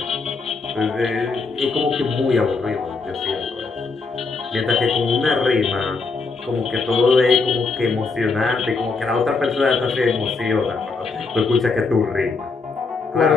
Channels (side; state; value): right; quieter; 4.2 dB